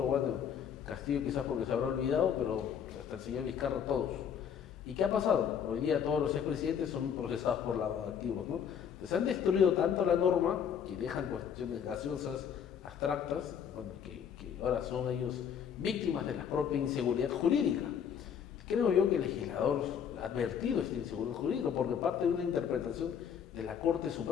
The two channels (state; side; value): quieter; right; 8.0 dB